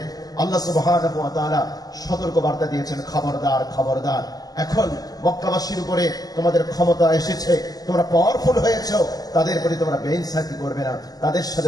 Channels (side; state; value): right; late; 0.18 ms